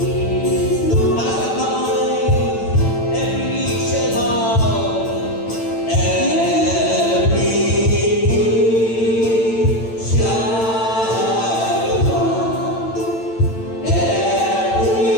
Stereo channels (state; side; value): late; right; 8.9 ms